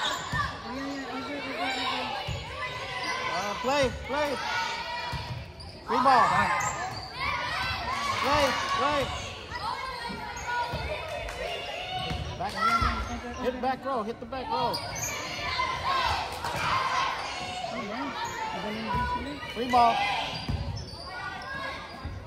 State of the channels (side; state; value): both; identical; correlation 1.00